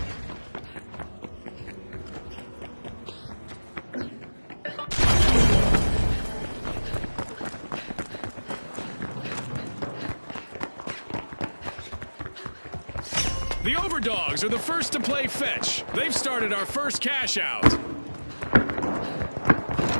The Overdogs are the first to play fetch. They've started our first cash out.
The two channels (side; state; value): both; inverted; correlation -1.00